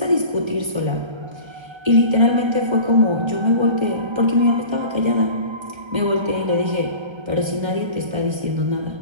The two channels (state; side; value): late; left; 1.3 ms